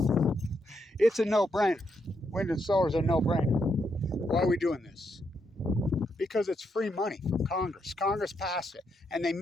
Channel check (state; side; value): normal; both; correlation 0.79